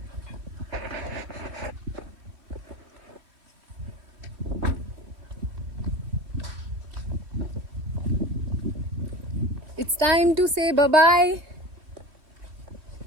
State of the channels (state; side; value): late; left; 3.0 ms